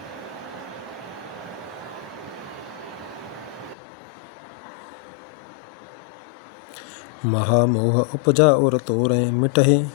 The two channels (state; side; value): drops out; right; at 3.8 s